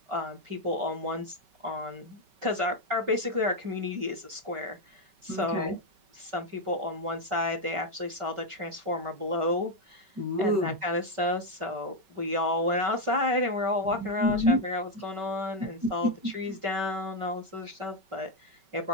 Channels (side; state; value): left; late; 5.2 ms